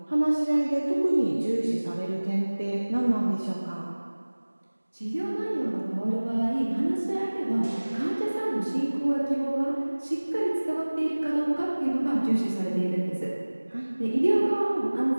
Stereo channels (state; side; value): inverted; both; correlation -1.00